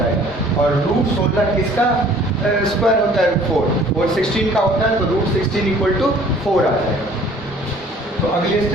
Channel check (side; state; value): both; normal; correlation 0.53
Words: और √16 किसका स्क्वायर होता है 4 और 16 का होता है, तो √16 इक्वल टू 4 आ जाएगा। तो अगले